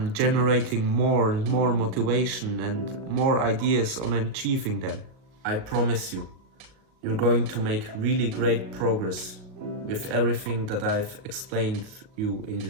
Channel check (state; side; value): late; left; 38 ms